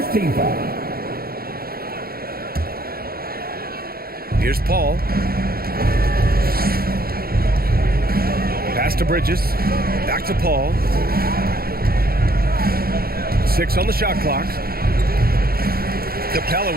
team foul. Here's Paul. Pass to Bridges. Back to Paul. 6 on the shot clock. Capella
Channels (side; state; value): left; late; 0.44 ms